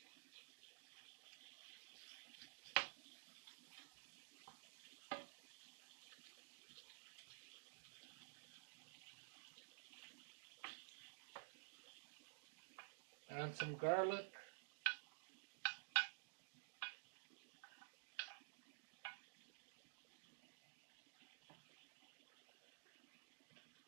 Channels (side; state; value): left; silent; digital silence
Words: Add some garlic.